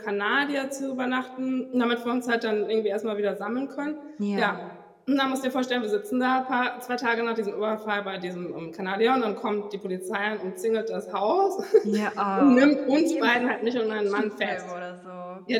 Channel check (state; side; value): identical; both; correlation 1.00